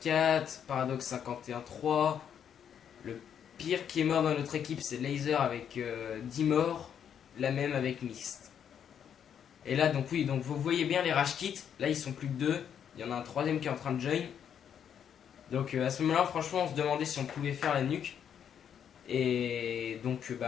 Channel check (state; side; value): quieter; right; 8.5 dB